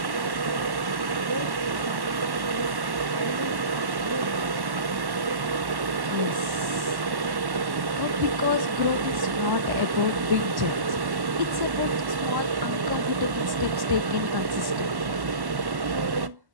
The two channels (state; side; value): late; left; 1.1 ms